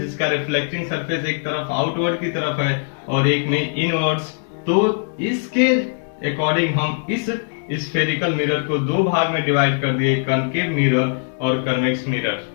रिफ्लेक्टिंग सरफेस एक तरफ आउटवर्ड की तरफ है, और एक में इनवर्ड्स। तो इसके अकॉर्डिंग हम इस स्फेरिकल मिरर को दो भाग में डिवाइड कर दिए, कनकेव मिरर और कन्वेक्स मिरर।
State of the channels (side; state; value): right; silent; digital silence